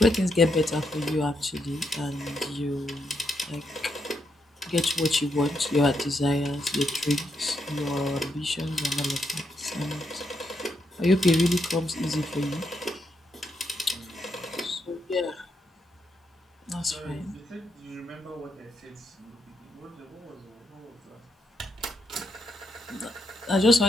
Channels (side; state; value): both; normal; correlation 0.80